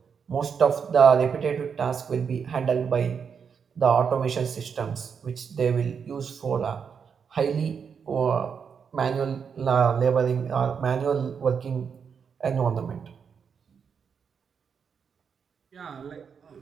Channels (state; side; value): quieter; left; 6.6 dB